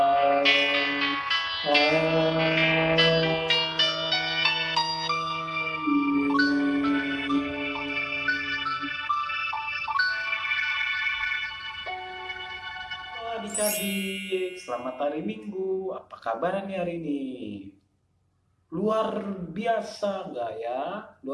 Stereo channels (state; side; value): identical; both; correlation 1.00